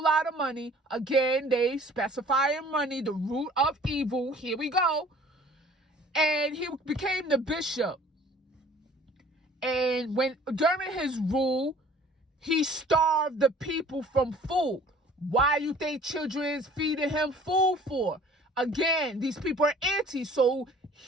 lot of money. Again, they specify in money, the root of evil. Here we go. And he became the bishop. And during his rule, he starved the people from food. Why you think children is feeding him food for? Again, these people are anti, so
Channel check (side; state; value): both; normal; correlation 0.51